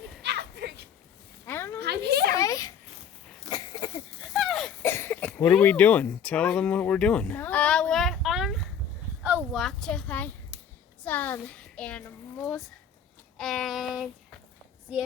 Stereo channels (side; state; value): right; quieter; 7.4 dB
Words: I don't know I'm here. What are we doing? Tell them what we're doing. We're on a walk to find some animals and see